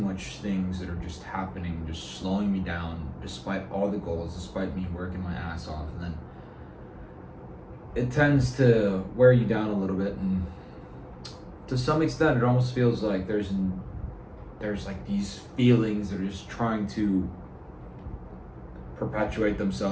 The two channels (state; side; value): identical; both; correlation 1.00